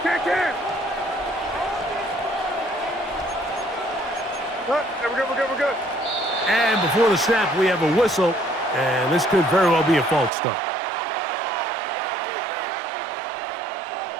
Can. We're good. And before the snap, we have a whistle, and this could very well be a false start.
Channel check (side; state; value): left; drops out; at 10.3 s